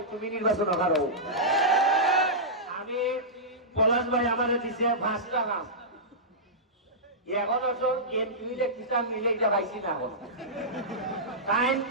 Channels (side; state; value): both; normal; correlation -0.14